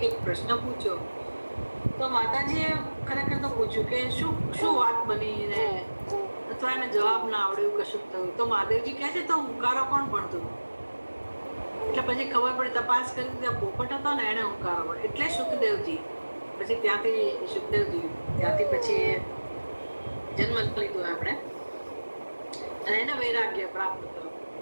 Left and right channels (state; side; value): inverted; both; correlation -1.00